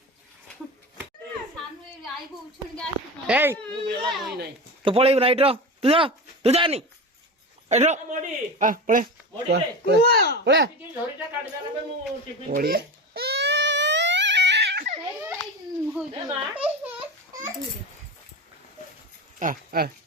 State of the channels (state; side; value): normal; both; correlation 0.26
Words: ସାନୁ ଆଇବ ଉଛୁଣିକି ଆସିବ ଏଇ ମୁଁ ବେଲା ବହି ନାହିଁ ତୁ ପଳେଇବୁ ନା ଏଇଟ୍ର ତୁ ଯାନି ଏଇଟ୍ର ମଡି ପଳେ ମଡିରେ ପଳେ ଟିକେ ଝଡିଟା କାଟିଦେଲା ପରେ ମୁଁ ଟିଫିନ ଓଡିଆ ଦେ ମା